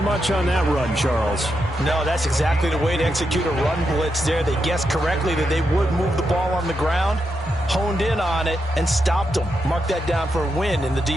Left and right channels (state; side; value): normal; both; correlation 0.84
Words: much on that run, Charles. No, that's exactly the way to execute a run blitz there. They guessed correctly that they would move the ball on the ground, honed in on it, and stopped them. Mark that down for a win in the